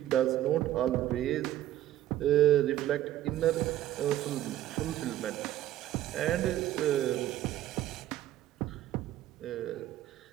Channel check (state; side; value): quieter; left; 13.3 dB